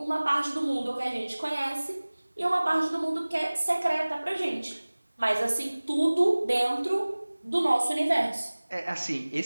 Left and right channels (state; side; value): inverted; both; correlation -1.00